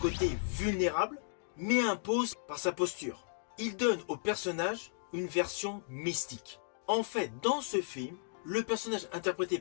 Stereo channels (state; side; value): silent; right; digital silence